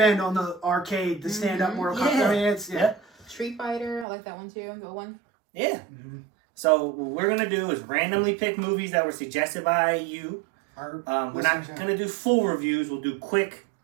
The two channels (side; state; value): left; drops out; at 4.0 s